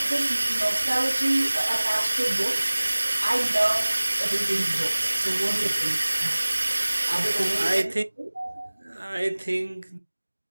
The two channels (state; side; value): inverted; both; correlation -1.00